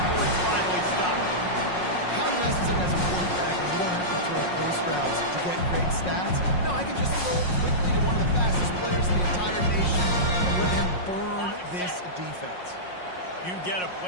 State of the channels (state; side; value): late; right; 5.5 ms